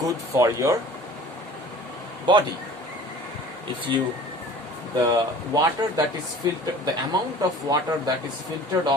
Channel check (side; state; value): both; normal; correlation 0.45